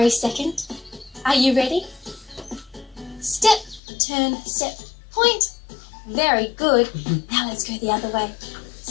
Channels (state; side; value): drops out; right; at 3.8 s